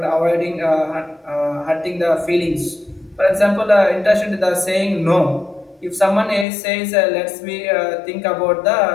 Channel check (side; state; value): right; drops out; at 6.5 s